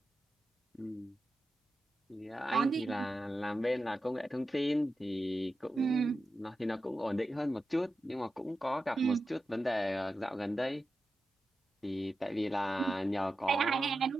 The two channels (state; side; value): normal; both; correlation 0.91